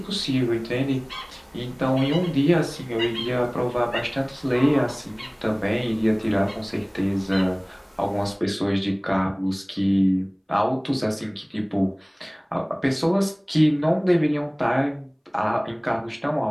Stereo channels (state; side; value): identical; both; correlation 1.00